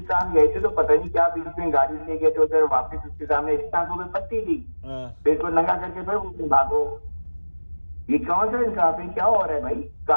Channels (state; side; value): inverted; both; correlation -1.00